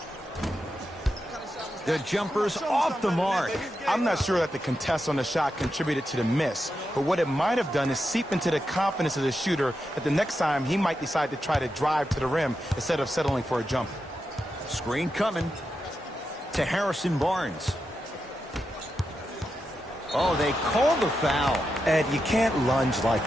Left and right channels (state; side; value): normal; both; correlation 0.87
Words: The jumper's off the mark. I'm not sure that the contest on the shot contributed to the miss, but what it might have done is seep into the confidence of the shooter that the next time he might decide to try to drive to the rim instead of settling for a jump. Screen coming to Harrison Barnes. Oh, they called the foul. Ed, you can't lunge